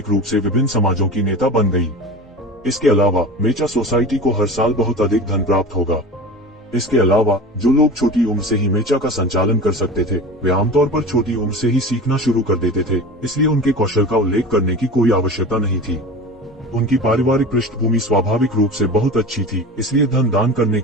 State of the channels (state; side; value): normal; both; correlation 0.33